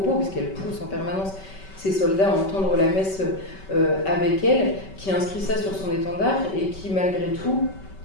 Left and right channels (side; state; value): right; late; 5.2 ms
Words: puisqu'elle pousse en permanence ses soldats à entendre la messe avec elle, qui inscrit ça sur son étendard et qui malgré tout